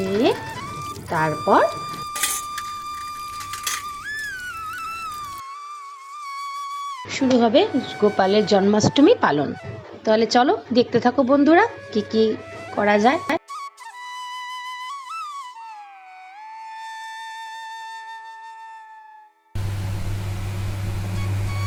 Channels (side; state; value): both; identical; correlation 1.00